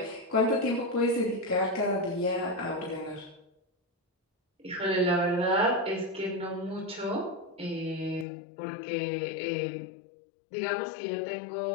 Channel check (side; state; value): right; drops out; at 8.2 s